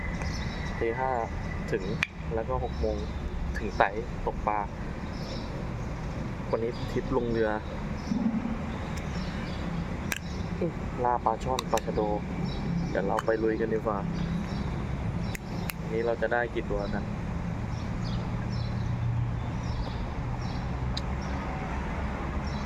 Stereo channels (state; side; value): identical; both; correlation 1.00